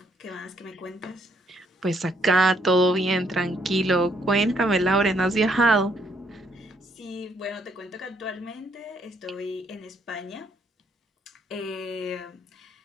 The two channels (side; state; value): both; normal; correlation 0.70